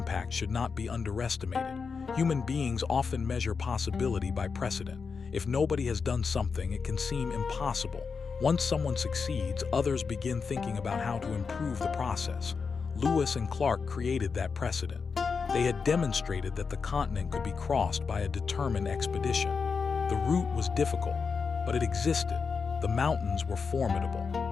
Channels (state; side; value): quieter; right; 5.3 dB